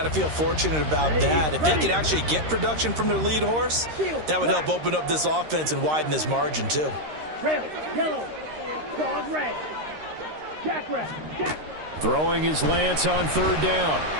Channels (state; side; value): late; left; 13 ms